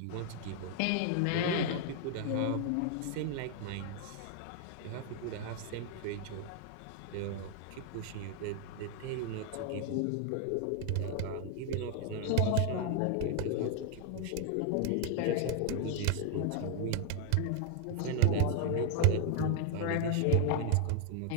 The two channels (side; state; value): both; different; correlation 0.00